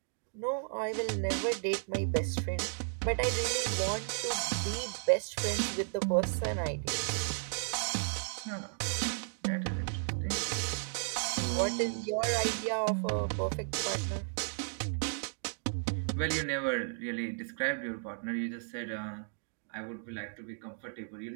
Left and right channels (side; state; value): left; silent; digital silence